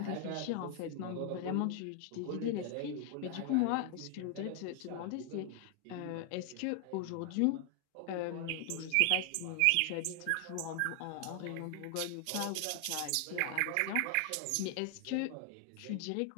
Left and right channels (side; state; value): both; different; correlation 0.00